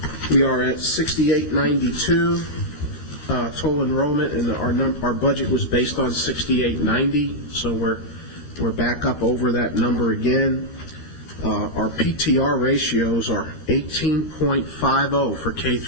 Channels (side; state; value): right; late; 13 ms